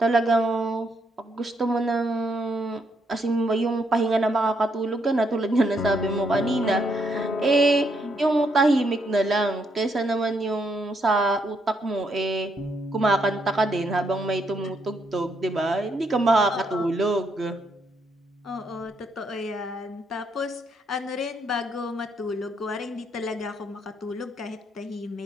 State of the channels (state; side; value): normal; both; correlation 0.75